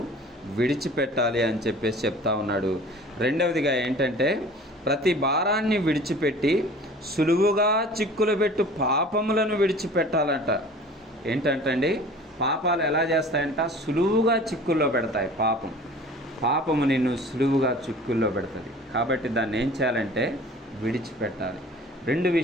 విడిచిపెట్టాలి అని చెప్పేసి చెప్తా ఉన్నాడు. రెండవదిగా ఏంటంటే ప్రతి భారాన్ని విడిచిపెట్టి సులువుగా చిక్కులు పెట్టు పాపములను విడిచిపెట్టాలంట. ఏంటంటండి, పాపాలు ఎలా చేస్తాయంట? సులువుగా చిక్కుల్లో పెడతాయి. పాపము నిన్ను సులువుగా చిక్కుల్లో పెడుతుంది. కాబట్టి దాన్ని ఏం చేయాలంటే విడిచిపెట్టాలి. 2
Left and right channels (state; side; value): normal; both; correlation 0.44